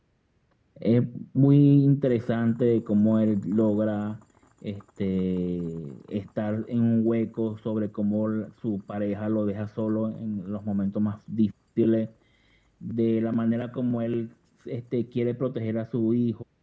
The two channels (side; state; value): both; identical; correlation 1.00